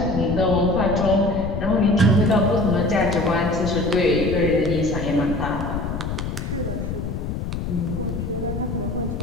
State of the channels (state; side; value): noise; left; rumble, 4 dB below the sound